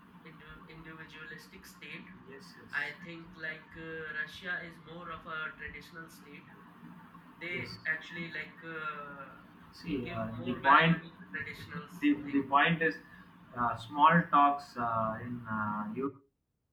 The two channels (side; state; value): both; identical; correlation 1.00